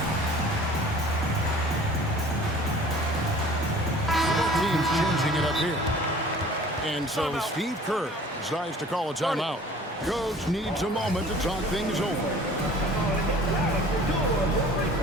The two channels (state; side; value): normal; both; correlation 0.48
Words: Team's changing it up here. And so Steve Kerr decides to call a timeout. Coach needs a moment to talk things over.